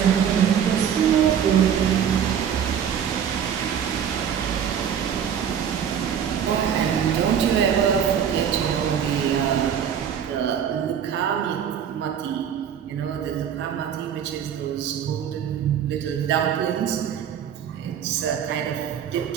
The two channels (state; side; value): quieter; left; 8.5 dB